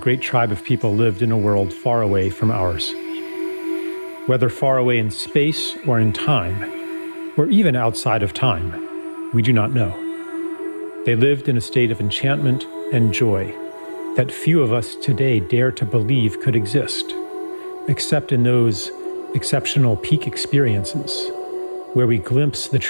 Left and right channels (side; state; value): both; inverted; correlation -1.00